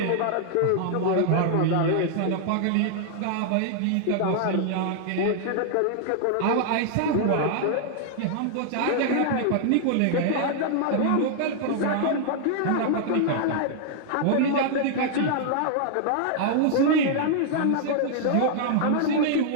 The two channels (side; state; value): both; different; correlation -0.01